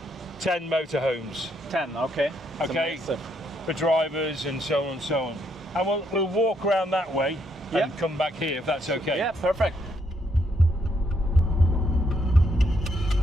10 motorhomes. 10, okay. Okay, for drivers and so on and so on. And we'll walk around that way and come back here if that's okay. Yeah, perfect.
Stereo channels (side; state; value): both; normal; correlation 0.74